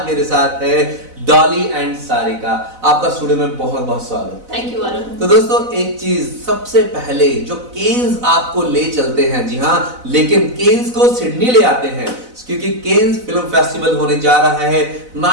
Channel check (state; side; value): late; left; 4.0 ms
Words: मेरे साथ है डॉली एंड सारिका। आपका स्टूडियो में बहुत बहुत स्वागत। Thank you Varun. तो दोस्तों एक चीज सबसे पहले जो केन्स आपको ले चलते हैं, जी हाँ, लेकिन केन्स को सिडनी ले आते हैं क्योंकि केन्स फिल्म फेस्टिवल होने जा रहा है